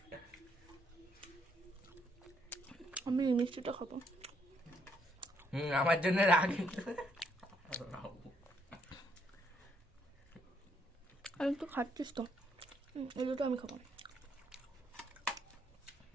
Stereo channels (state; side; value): normal; both; correlation 0.71